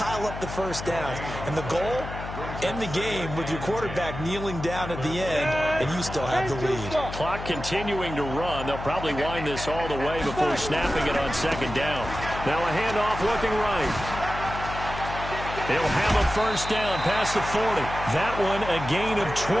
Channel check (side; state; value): left; noise; hum, 9 dB below the sound